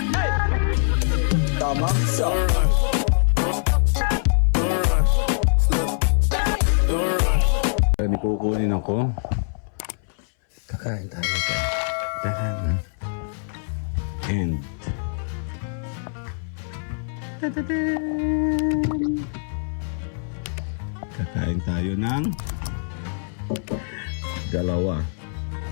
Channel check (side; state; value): right; silent; 60 dB below the other